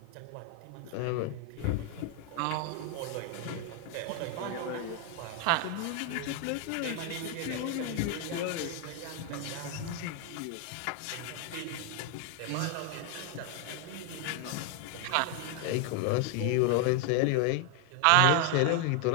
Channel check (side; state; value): both; different; correlation 0.00